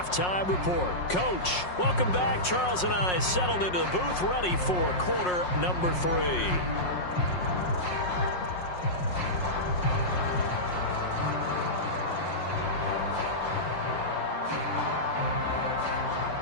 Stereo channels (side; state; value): right; late; 5.5 ms